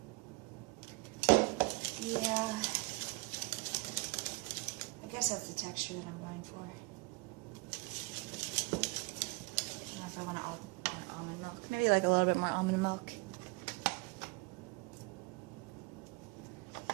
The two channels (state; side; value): quieter; left; 26.4 dB